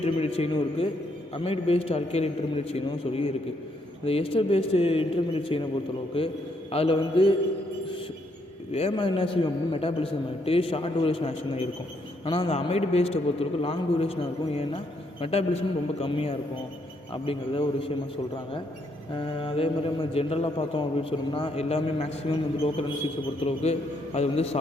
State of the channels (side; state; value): both; normal; correlation 0.74